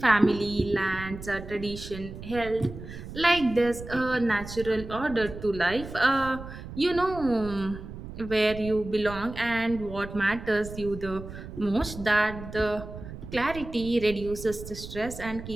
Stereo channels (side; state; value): right; noise; rumble, 12 dB below the sound